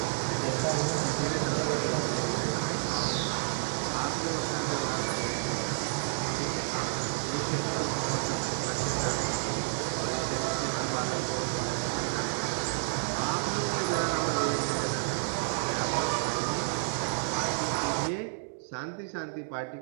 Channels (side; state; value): left; silent; digital silence